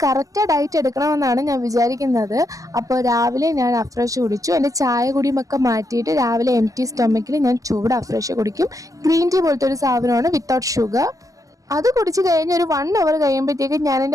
കറക്റ്റ് ഡയറ്റ് എടുക്കണമെന്നാണ് ഞാൻ വിചാരിക്കുന്നത്. അപ്പോൾ രാവിലെ ഞാൻ അഫ്രഷ് കുടിച്ചു. എൻ്റെ ചായ കുടിയുമൊക്കെ മാറ്റിയിട്ട് രാവിലെ എംപ്റ്റി സ്റ്റൊമക്കിൽ ഞാൻ ചൂട് അഫ്രഷ് കുടിക്കും. ഗ്രീൻ ടീ പോലത്തെ ഒരു സാധനമാണ് വിത്തൗട്ട് ഷുഗർ. അത് കുടിച്ച് കഴിഞ്ഞ് ഒരു 1 അവർ കഴിയുമ്പോഴത്തേക്കും ഞാൻ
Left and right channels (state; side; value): late; left; 0.16 ms